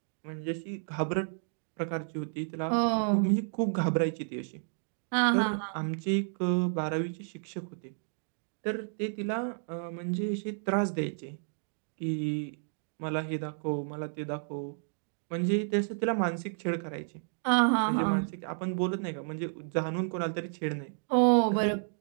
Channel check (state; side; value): silent; left; digital silence